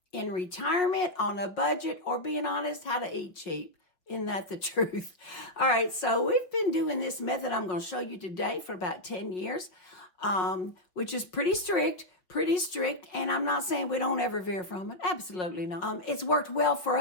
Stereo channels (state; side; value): late; right; 5.3 ms